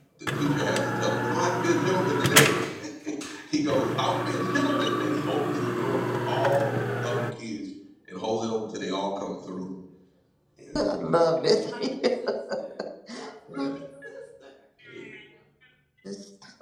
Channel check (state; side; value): identical; both; correlation 1.00